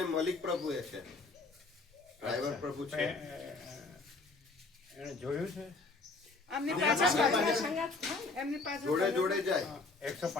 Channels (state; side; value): quieter; right; 3.7 dB